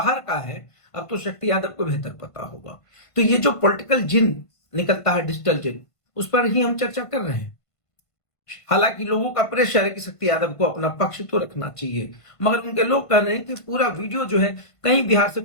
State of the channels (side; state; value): right; late; 1.5 ms